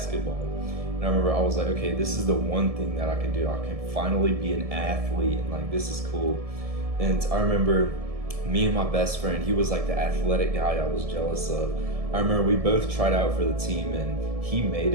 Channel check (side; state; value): left; late; 1.7 ms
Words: And I remember I was like, okay, this is the one thing that I can do. I can finally be an athlete, and like, this is cool. And I remember me and my best friend, he was like the athletic guy I was jealous of. I remember we both tried out for the team, and he made